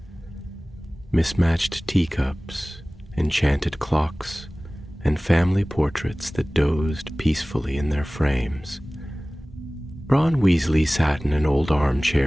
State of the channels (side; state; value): both; normal; correlation 0.98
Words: Mismatched teacups, enchanted clocks, and family portraits that dozed peacefully in their frames. Ron Weasley sat in an old